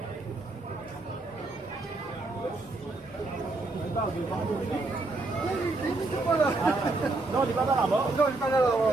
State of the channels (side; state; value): left; quieter; 3.2 dB